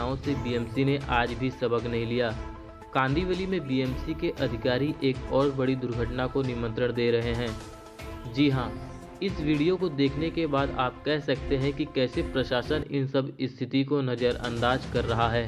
से बीएमसी ने आज भी सबक नहीं लिया। कांदिवली में बीएमसी के अधिकारी एक और बड़ी दुर्घटना को निमंत्रण दे रहे हैं। जी हां, इस वीडियो को देखने के बाद आप कह सकते हैं कि कैसे प्रशासन इन सब स्थिति को नज़रअंदाज कर रहा है,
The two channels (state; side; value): identical; both; correlation 1.00